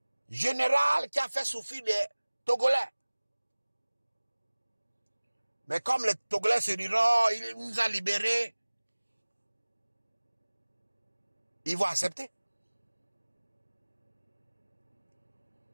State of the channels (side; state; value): both; inverted; correlation -1.00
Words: général qui a fait souffrir les Togolais. Mais comme les Togolais se diront, il nous a libérés, ils vont accepter.